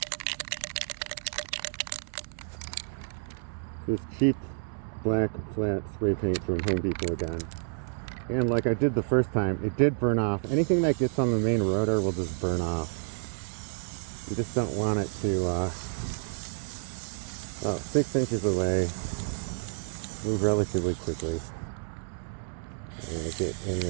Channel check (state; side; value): silent; left; digital silence